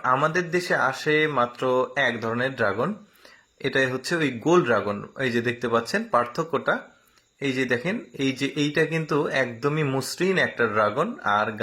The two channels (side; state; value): both; identical; correlation 1.00